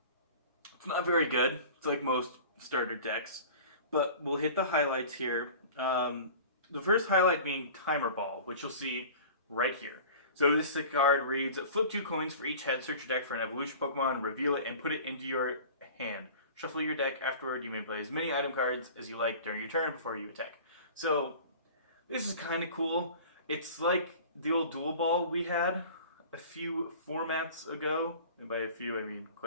very good. It's like most starter decks. But we'll hit the highlights here. The first highlight being Timer Ball, which you'll see right here. So this card reads, flip 2 coins for each head, search your deck for an evolution Pokemon, reveal it, and put it into your hand. Shuffle your deck afterward. You may play as many item cards as you like during your turn before you attack. So, this is kind of cool. It's like the old Dual Ball we had a few formats ago. And by a few, I mean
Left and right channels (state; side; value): inverted; both; correlation -0.41